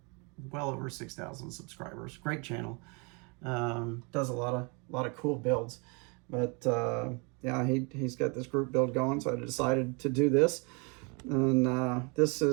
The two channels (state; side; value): quieter; left; 31.9 dB